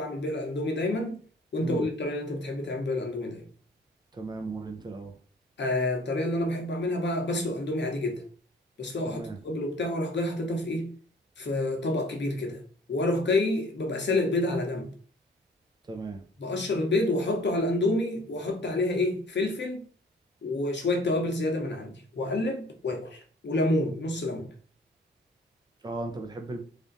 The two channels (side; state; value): both; normal; correlation 0.52